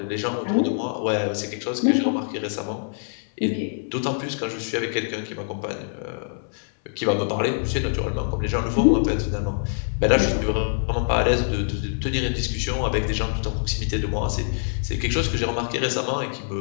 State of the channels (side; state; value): right; silent; 62 dB below the other